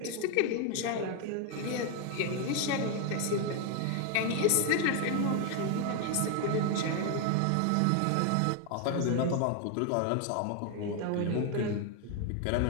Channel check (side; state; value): both; different; correlation 0.01